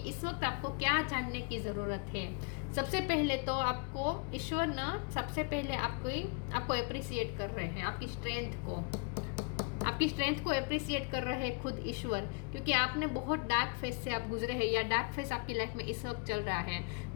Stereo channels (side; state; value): right; quieter; 31.0 dB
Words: इस वक्त आपको क्या जानने की ज़रूरत है। सबसे पहले तो आपको ईश्वर ना सबसे पहले आपको अप्रिसिएट कर रहे हैं, आपकी स्ट्रेंथ को अप्रिसिएट कर रहे हैं खुद ईश्वर, क्योंकि आपने बहुत डार्क फेस से आप गुजरे हैं, या डार्क फेस आपकी लाइफ में इस वक्त चल रहा है।